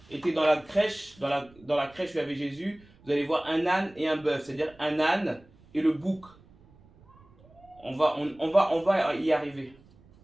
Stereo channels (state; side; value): noise; right; rumble, 27 dB below the sound